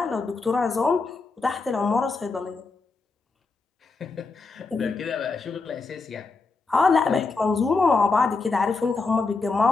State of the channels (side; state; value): right; quieter; 4.1 dB